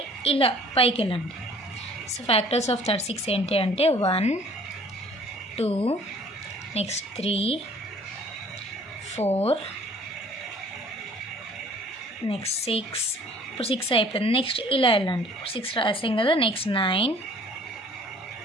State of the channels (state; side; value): normal; both; correlation 0.53